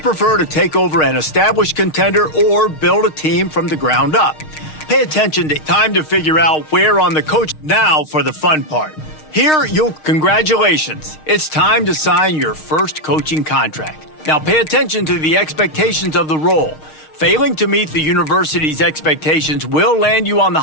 to take over an established contender or build a team from the ground up? Pay attention to time to figure out where on the coach. Now for the fun part. Congratulations. It's time to sign your first coaching contract. Now pay attention to the expectations of the role. Failing to meet the university's expectations will land you on the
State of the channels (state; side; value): late; right; 6.5 ms